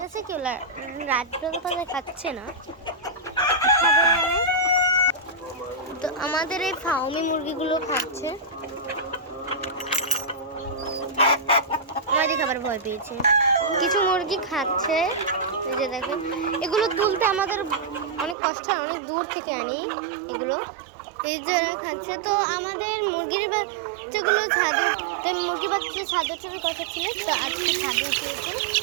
কেউ রাড লতা পাতা খাচ্ছে না, তো আমাদের এই ফার্মি মুরগিগুলো খাচ্ছে। আমাদের খাবার ভয় পেয়েছে, কিছু মুরগি খাচ্ছে। এই যে দেখেন, এগুলো তুলতে আমাদের অনেক কষ্ট হয়, অনেক দূর থেকে আনি এগুলো। এই যে খাচ্ছে। তো আমাদের মুরগির বাচ্চাগুলো ছাদে, মুরগি বাচ্চা ছাদে ওঠার কথা ছিল, তো আজকে ছাদে উঠিয়েছি।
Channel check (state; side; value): drops out; left; at 18.4 s